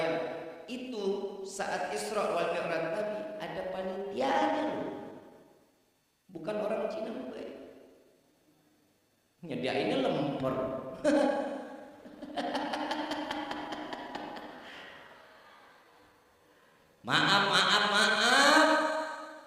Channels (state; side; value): identical; both; correlation 1.00